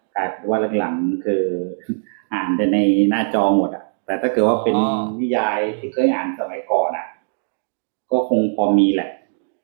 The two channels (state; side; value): silent; left; digital silence